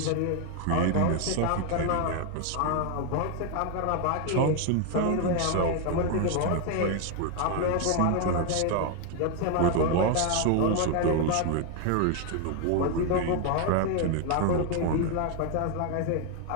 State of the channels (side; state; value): both; different; correlation 0.01